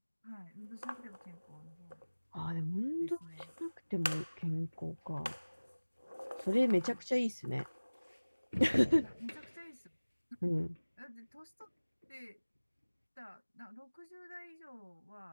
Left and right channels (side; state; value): both; inverted; correlation -1.00